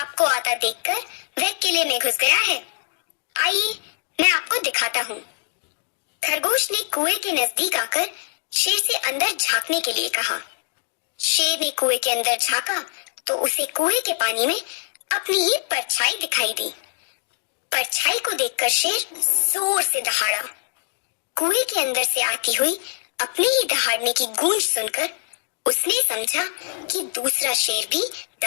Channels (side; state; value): right; silent; digital silence